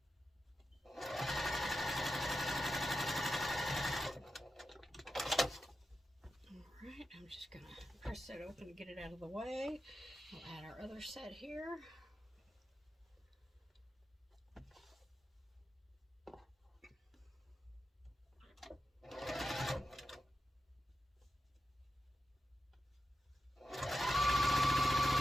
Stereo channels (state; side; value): normal; both; correlation 0.90